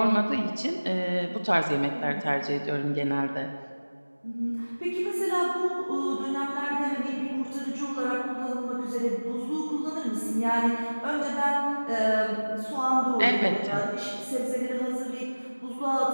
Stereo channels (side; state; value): both; inverted; correlation -1.00